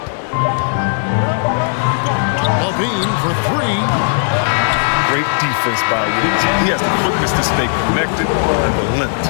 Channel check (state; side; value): silent; right; 62 dB below the other